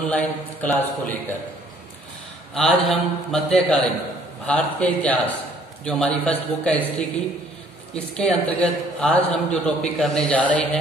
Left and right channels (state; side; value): normal; both; correlation 0.60